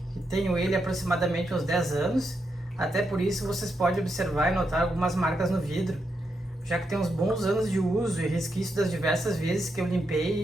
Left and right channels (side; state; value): both; normal; correlation 0.83